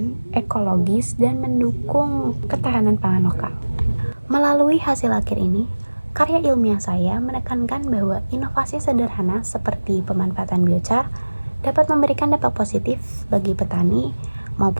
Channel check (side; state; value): both; inverted; correlation -1.00